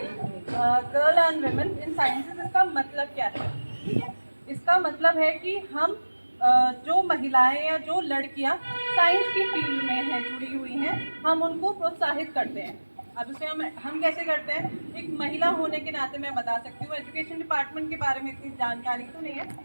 girl and women in sciences, इसका मतलब क्या है? इसका मतलब है कि हम जो महिलाएं या जो लड़कियां साइंस की फील्ड में हैं, जुड़ी हुई हैं, हम उनको प्रोत्साहित करते हैं। अब इसे हम कैसे करते हैं? एक महिला होने के नाते मैं बता सकती हूँ, एजुकेशन डिपार्टमेंट के बारे में इतनी जानकारी तो नहीं है,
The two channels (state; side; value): inverted; both; correlation -1.00